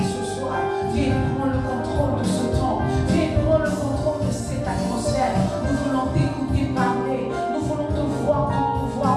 ce soir. Viens prendre le contrôle de ce temps. Viens prendre le contrôle de cette atmosphère. Nous voulons t'écouter parler. Nous voulons te voir, te mouvoir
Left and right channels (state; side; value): identical; both; correlation 1.00